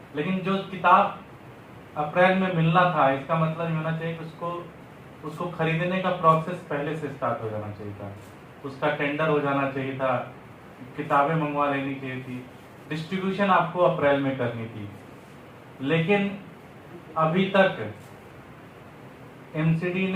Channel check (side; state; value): both; identical; correlation 1.00